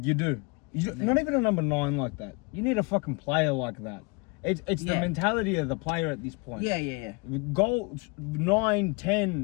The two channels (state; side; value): quieter; right; 28.9 dB